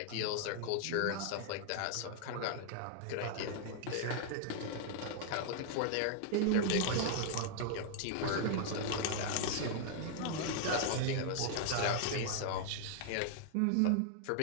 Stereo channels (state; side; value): different; both; correlation 0.00